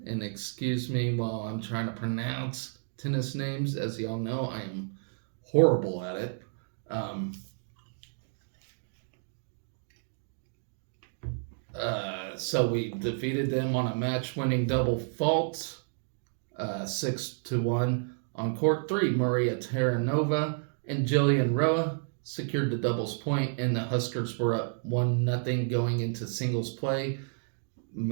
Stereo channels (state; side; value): silent; left; digital silence